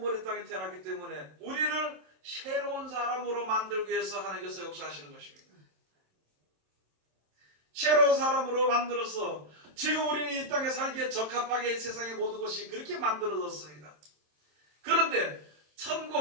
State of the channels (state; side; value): late; left; 26 ms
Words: 이 땅에 태어났기 때문에 우리를 새로운 사람으로 만들기 위해서 하나님께서 역사하시는 것입니다. 새로운 사람으로 만들어서 지금 우리는 이 땅에 살기에 적합하게 세상의 모든 것이 그렇게 만들어졌습니다. 그런데